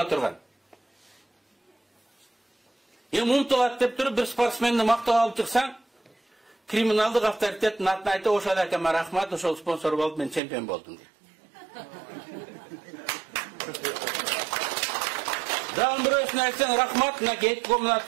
турган. Эми умтулат деп туруп бир спортсменди мактап алып чыксаң, криминалдык авторитеттин атын айтып, ошол акама рахмат, ошол спонсор болуп мен чемпион болдум дейт. Дагы бирөөсүнө айтсаң рахмат, мынакей комнат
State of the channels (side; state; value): left; drops out; at 10.4 s